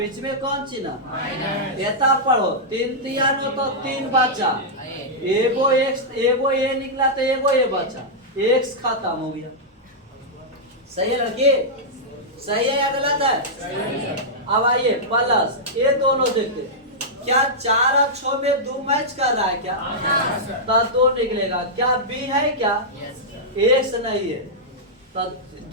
में कौन चिन्ह? एता पढ़ो 3 3 9 तो 3 बचा, एगो x एगो a निकला तो एगो a बचा, x खत्म हो गया। सही है लड़की? सही है या गलत है? अब आइए प्लस, ये दोनों देखते क्या 4 और 6 में 2 मैच कर रहा है क्या? तो 2 निकलेगा, क्या b है क्या? x नहीं है तो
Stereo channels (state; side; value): normal; both; correlation -0.09